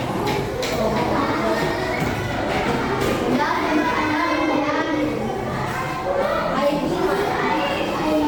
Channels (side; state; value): both; identical; correlation 1.00